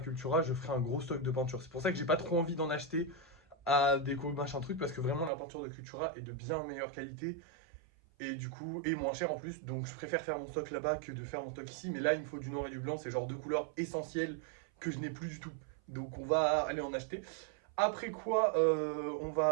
je ferai un gros stock de peinture. C'est pour ça que j'ai pas trop envie d'en acheter à déco machin truc, parce que vraiment la peinture de Cultura est de bien meilleure qualité. Et du coup, et moins cher en plus. Donc je préfère faire mon stock là-bas que de faire mon stock ici. Mais là, il me faut du noir et du blanc, c'est genre deux couleurs essentielles que je n'ai plus du tout. Donc on va aller en acheter. Après quoi, on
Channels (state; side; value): drops out; left; at 5.3 s